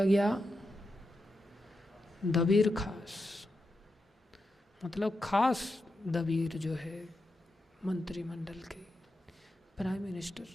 गया? दबीर खास, मतलब खास दबीर जो है, मंत्रिमंडल के, प्राइम मिनिस्टर,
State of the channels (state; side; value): normal; both; correlation 0.87